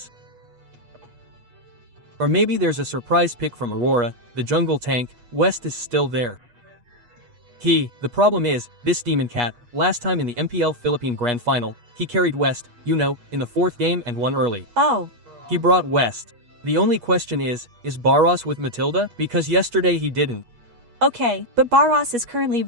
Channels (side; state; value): left; late; 8.3 ms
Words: Or maybe there's a surprise pick from Aurora, the jungle tank. West is still there. The problem is, this Demon Cat, last time in the MPL Philippine Grand Final, he carried West, in the 4th game and won early. Oh. He brought West. The only question is Barros with Matilda? Because yesterday he didn't. Okay, but Barros is currently